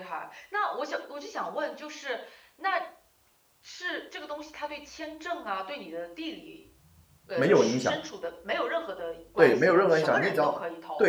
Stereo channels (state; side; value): identical; both; correlation 1.00